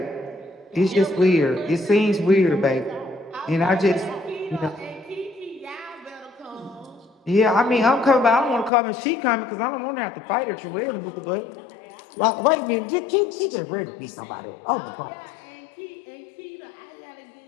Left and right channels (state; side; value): drops out; right; at 8.7 s